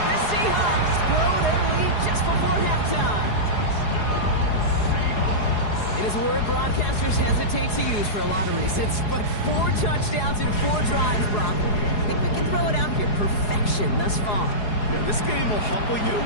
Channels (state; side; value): late; right; 4.8 ms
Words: The Seahawks grow their lead just before halftime. It is a word broadcasters hesitate to use for a lot of reasons, but 4 touchdowns in 4 drives, Brock. I think we can throw it out here. Perfection thus far. Yeah, this game will humble you